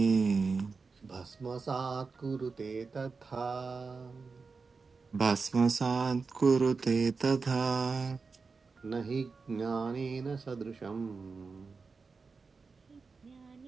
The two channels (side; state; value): left; quieter; 4.6 dB